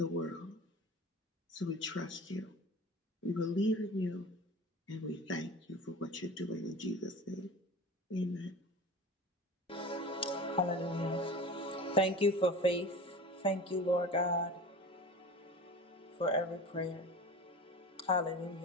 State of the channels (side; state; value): both; normal; correlation 0.35